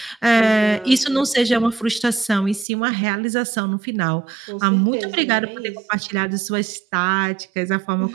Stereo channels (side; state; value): left; drops out; at 2.7 s